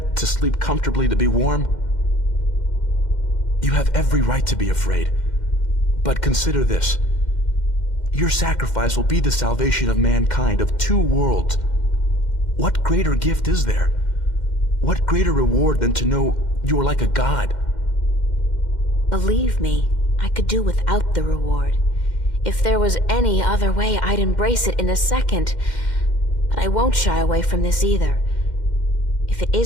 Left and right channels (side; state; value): right; late; 2.1 ms